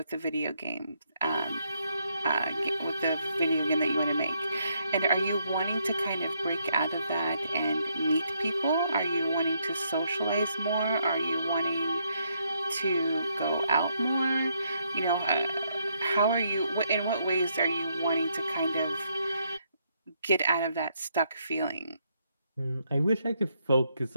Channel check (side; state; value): both; inverted; correlation -0.75